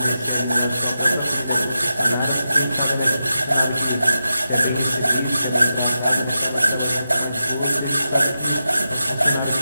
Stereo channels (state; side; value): inverted; both; correlation -0.89